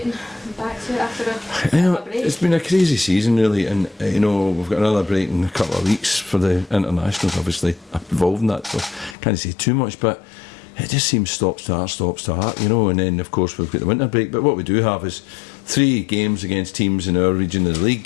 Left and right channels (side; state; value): right; drops out; at 9.2 s